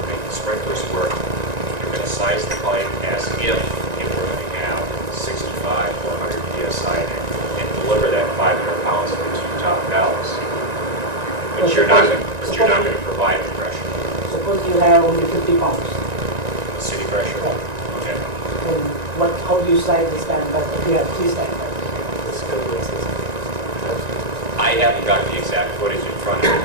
make the sprinklers work, you're going to size the pipe as if it were going to have 65 or 100 psi in it and deliver that 500 pounds to the two top valves. But you're not going to provide the pressure. Suppose you have only 50 pounds. The city pressure. Okay. Then how do you size the standpipe if you have 3 standpipes? I haven't got the exact footage in front of me,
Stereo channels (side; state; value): left; late; 1.9 ms